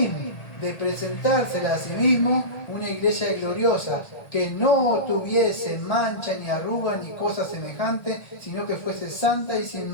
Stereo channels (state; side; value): late; right; 1.8 ms